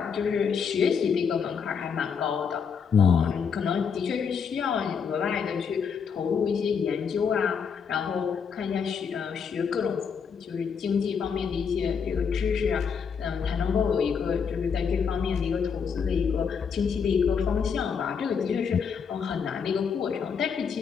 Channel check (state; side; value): quieter; right; 6.4 dB